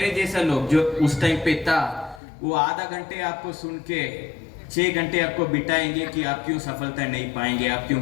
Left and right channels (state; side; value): drops out; right; at 2.2 s